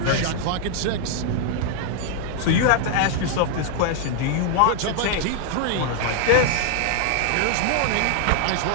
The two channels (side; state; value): both; different; correlation 0.00